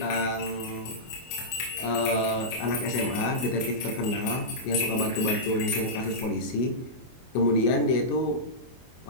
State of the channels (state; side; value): late; right; 24 ms